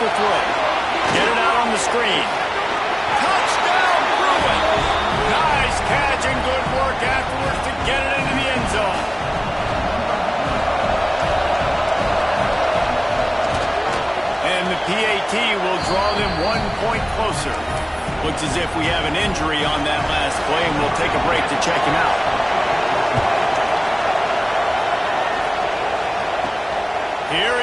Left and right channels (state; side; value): identical; both; correlation 1.00